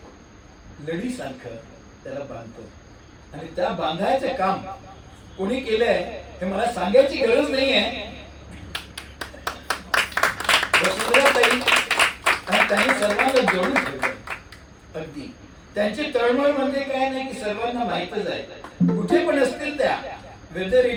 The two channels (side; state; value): both; identical; correlation 1.00